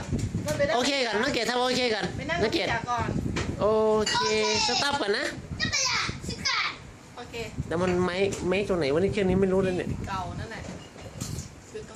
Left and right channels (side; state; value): both; identical; correlation 1.00